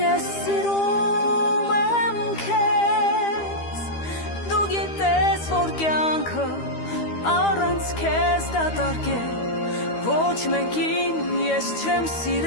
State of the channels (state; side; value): late; right; 13 ms